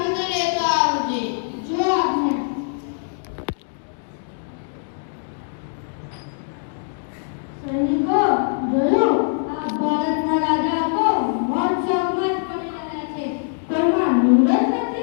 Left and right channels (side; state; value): right; silent; digital silence